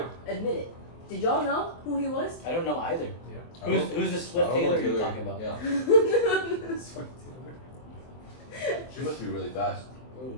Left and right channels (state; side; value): late; right; 23 ms